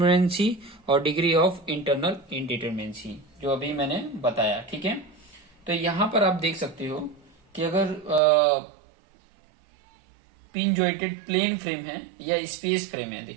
और डिग्री ऑफ इंटरनल इनडिटरमिनेंसी, जो अभी मैंने बताया, ठीक है। तो यहां पर आप देख सकते हो कि अगर पिन जॉइंटेड प्लेन फ्रेम है या स्पेस फ्रेम है,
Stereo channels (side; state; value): left; drops out; at 8.2 s